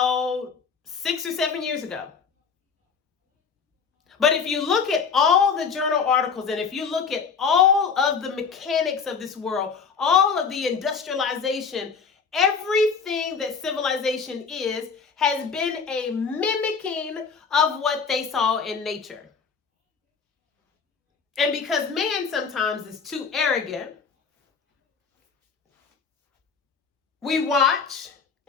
6 or 7 years ago. But if you look at all the journal articles, and if you look at all of the mechanics of this world, all of the industrialization, everything that civilization has been a mimicking of what they saw in nature. And because man sometimes is too arrogant, we watch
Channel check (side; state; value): right; quieter; 5.8 dB